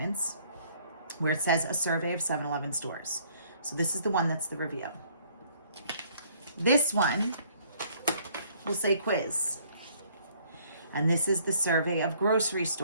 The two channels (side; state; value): both; inverted; correlation -0.61